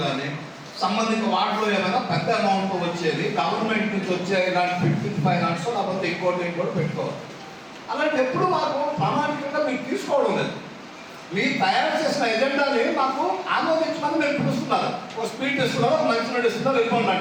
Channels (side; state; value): both; identical; correlation 1.00